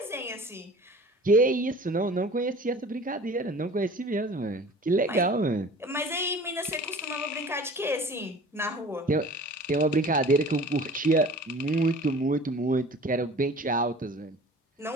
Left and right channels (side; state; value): both; normal; correlation 0.44